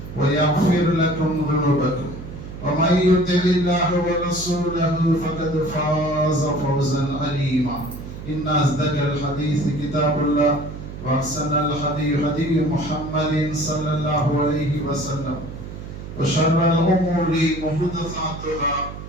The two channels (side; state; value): right; noise; hum, 11 dB below the sound